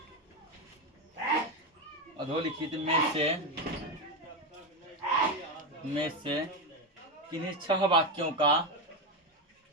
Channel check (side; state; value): both; normal; correlation 0.12